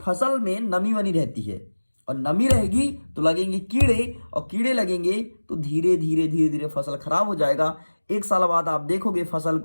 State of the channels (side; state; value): both; inverted; correlation -1.00